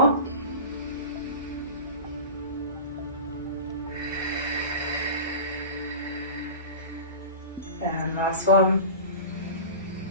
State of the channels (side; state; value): both; inverted; correlation -0.33